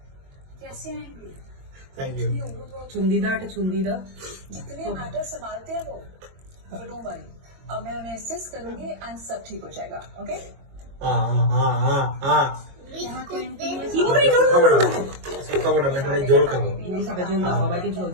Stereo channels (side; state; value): left; late; 22 ms